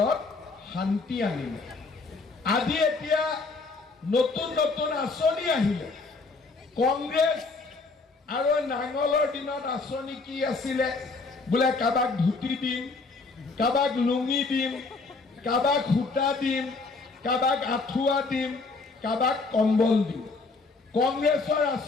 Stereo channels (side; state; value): right; quieter; 3.9 dB